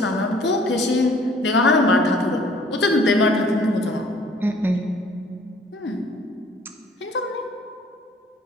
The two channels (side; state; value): both; normal; correlation 0.56